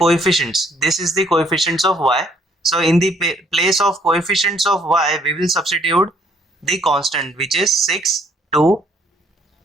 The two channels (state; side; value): normal; both; correlation 0.65